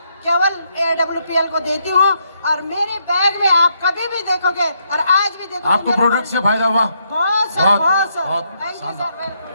केवल AWPL को देती हूँ। और मेरे बैग में आप कभी भी देखोगे और आज भी देखोगे, आपको प्रोडक्ट से फायदा हुआ? बहुत सर, बहुत सर। बहुत थैंक यू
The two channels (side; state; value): both; inverted; correlation -0.77